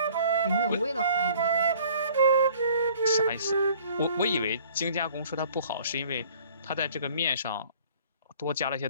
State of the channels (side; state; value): both; inverted; correlation -0.53